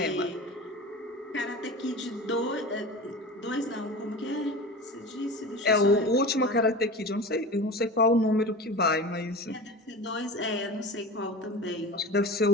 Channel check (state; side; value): normal; both; correlation 0.32